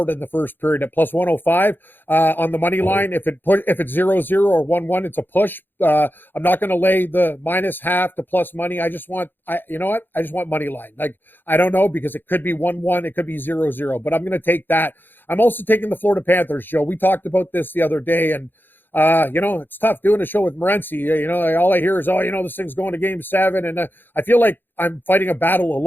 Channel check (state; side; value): late; right; 0.095 ms